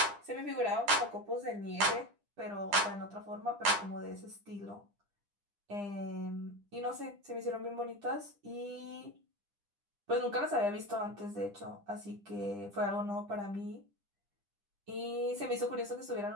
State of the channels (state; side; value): late; left; 9.9 ms